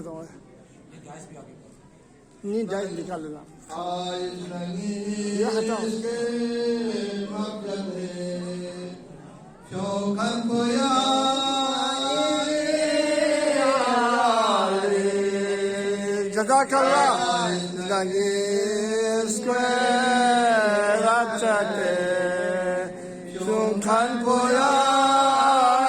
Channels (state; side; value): identical; both; correlation 1.00